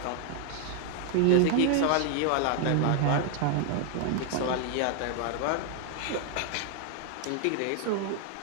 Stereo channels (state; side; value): different; both; correlation 0.00